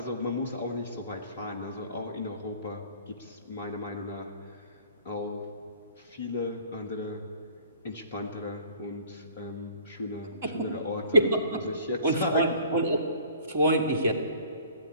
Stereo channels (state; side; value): inverted; both; correlation -0.50